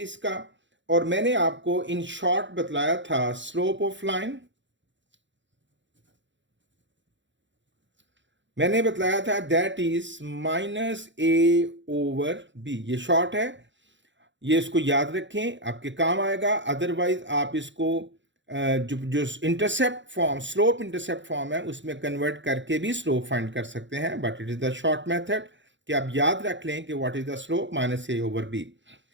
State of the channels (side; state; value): left; late; 0.54 ms